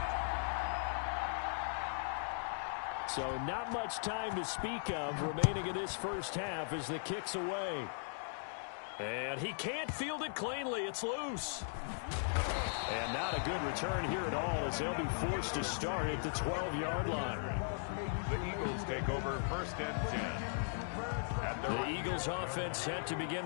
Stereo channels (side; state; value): right; silent; digital silence